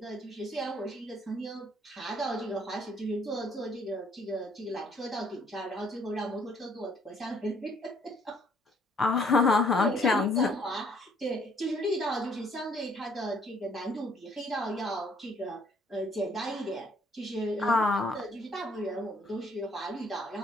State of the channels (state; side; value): normal; both; correlation 0.64